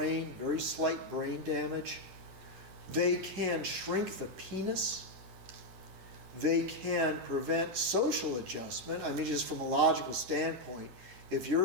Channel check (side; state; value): left; late; 10 ms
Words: very slight brain damage. They can shrink the penis. They can prevent social adjustment. I mean, just from a logical standpoint, if